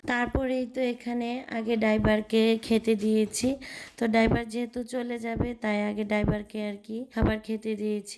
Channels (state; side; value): identical; both; correlation 1.00